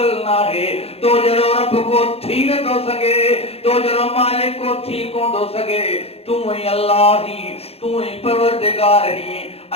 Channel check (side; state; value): right; late; 0.29 ms